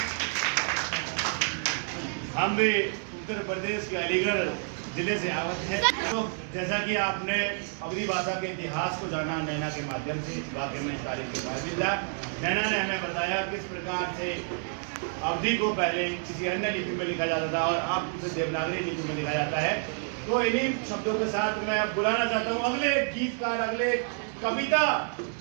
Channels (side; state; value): left; silent; 56 dB below the other